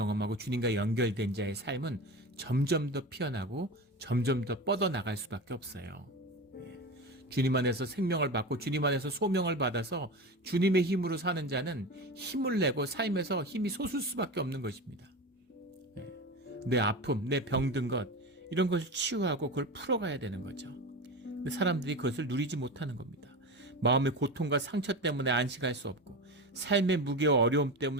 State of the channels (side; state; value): both; normal; correlation 0.26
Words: 주님과 연결된 자의 삶은 점점 더 피어나고 점점 더 뻗어나갈 수밖에 없어요. 주님 안에서 생명을 받고 주님 안에서 소명을 받아서 주님의 힘으로 사는 자는 힘을 내고 삶에서 힘이 솟을 수밖에 없는 것입니다. 내 아픔, 내 병든 것 이런 것을 치유하고 그걸 풀어가야 되는 거죠. 근데 사람들이 그것을 누리지 못하는 겁니다. 마음의 고통과 상처 때문에 안식할 수 없고 삶의 무게와 어려움